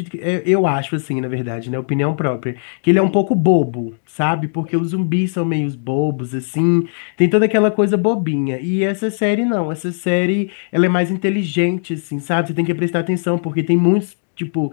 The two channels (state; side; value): silent; right; digital silence